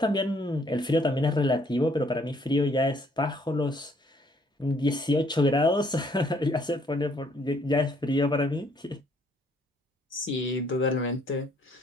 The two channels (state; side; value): normal; both; correlation 0.65